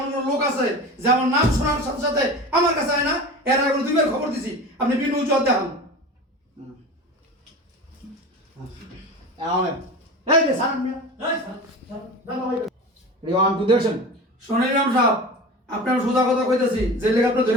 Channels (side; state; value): both; normal; correlation 0.32